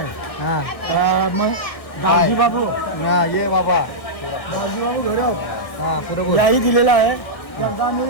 हां मग गावजी बाबू हां ये बाबा गावजी बाबू घरी हां बरोबर याही दिलेला आहे त्यांचा आम्ही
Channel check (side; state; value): right; late; 1.6 ms